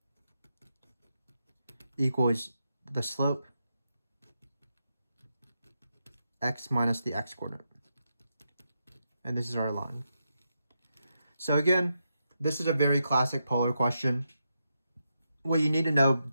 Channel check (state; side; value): inverted; both; correlation -0.85